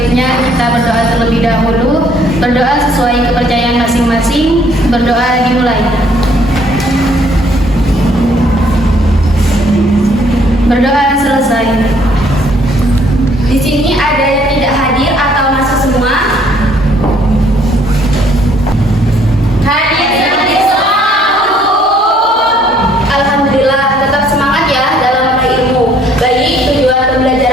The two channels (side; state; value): both; normal; correlation 0.63